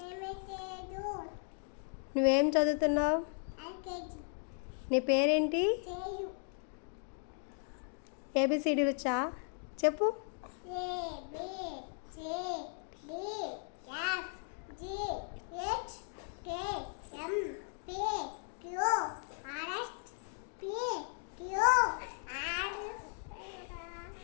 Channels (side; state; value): right; silent; 53 dB below the other